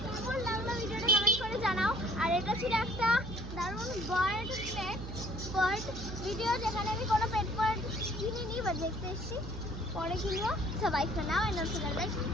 কেমন লাগলো ভিডিওটা কমেন্ট করে জানাও। আর এটা ছিল একটা দারুণ বার্ড ভিডিও, যেখানে আমি কোনো পেট বার্ড কিনিনি, বাট দেখতে এসেছি, পরে কিনবো। সবাই for now and also like my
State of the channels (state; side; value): noise; right; hum, 8 dB below the sound